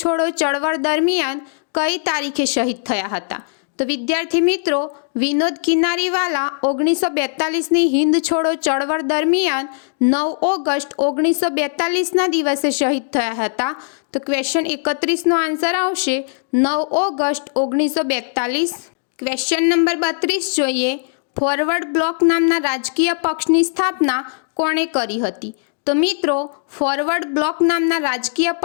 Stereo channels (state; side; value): silent; right; digital silence